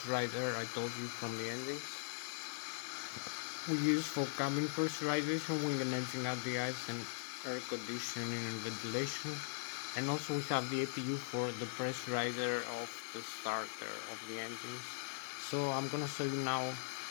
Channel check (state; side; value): silent; right; digital silence